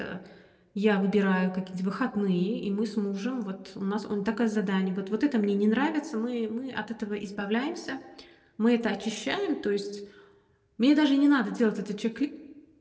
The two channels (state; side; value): identical; both; correlation 1.00